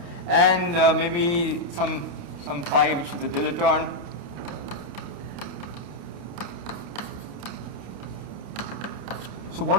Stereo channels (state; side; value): late; left; 29 ms